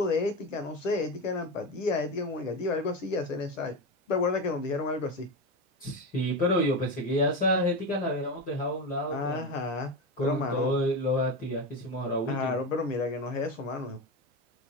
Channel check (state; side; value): normal; both; correlation 0.18